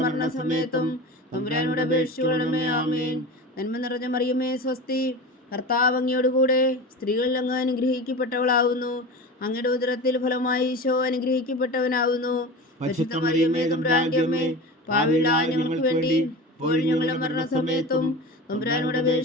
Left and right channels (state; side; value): normal; both; correlation 0.31